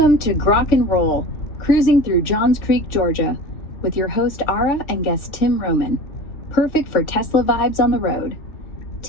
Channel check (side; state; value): right; late; 3.4 ms